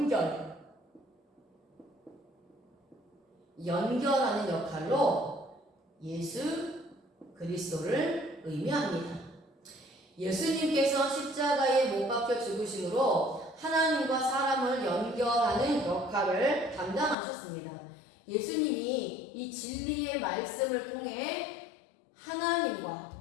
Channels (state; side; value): drops out; right; at 17.2 s